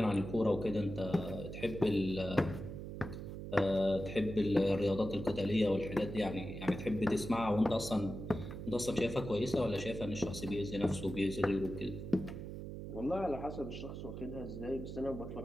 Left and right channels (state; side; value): noise; right; hum, 8 dB below the sound